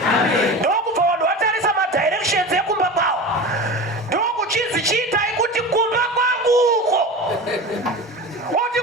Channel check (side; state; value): both; normal; correlation 0.30